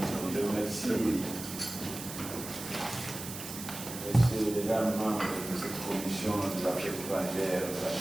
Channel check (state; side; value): noise; right; hiss, 9 dB below the sound